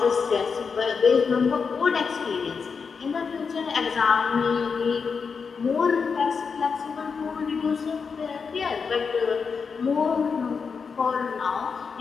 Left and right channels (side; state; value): right; quieter; 5.5 dB